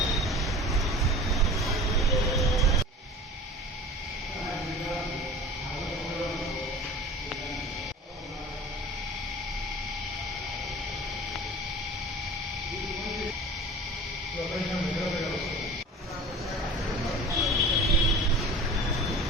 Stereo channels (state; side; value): normal; both; correlation 0.39